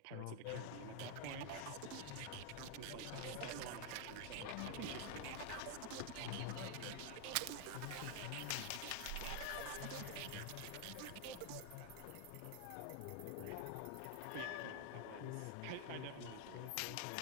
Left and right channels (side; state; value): both; different; correlation 0.00